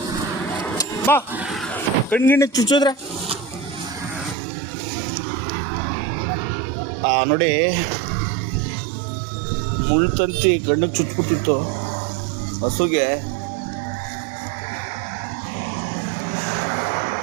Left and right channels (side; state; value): left; drops out; at 4.4 s